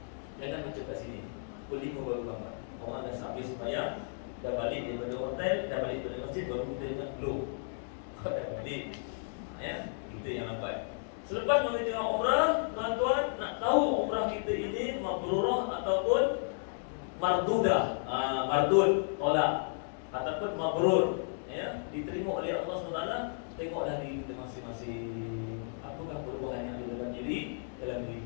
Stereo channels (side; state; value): right; silent; digital silence